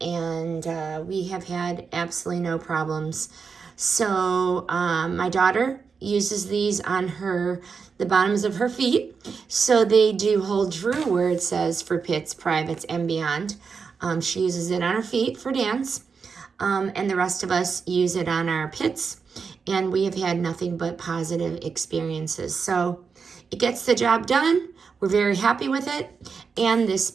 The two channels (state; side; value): quieter; left; 5.5 dB